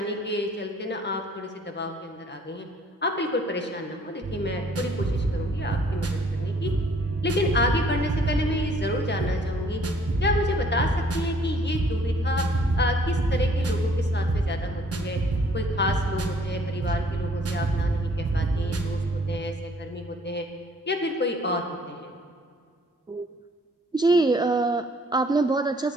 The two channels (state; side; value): normal; both; correlation 0.60